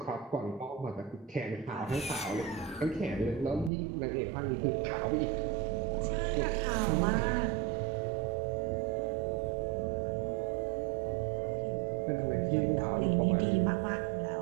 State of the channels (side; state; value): left; drops out; at 3.7 s